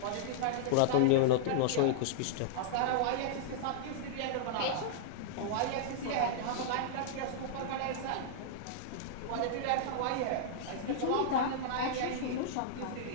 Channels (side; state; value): both; different; correlation -0.02